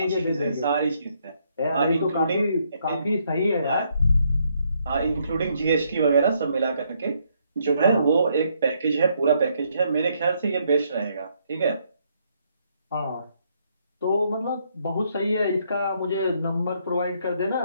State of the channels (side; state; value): both; inverted; correlation -0.72